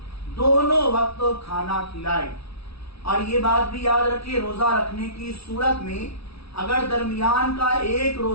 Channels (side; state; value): right; late; 0.76 ms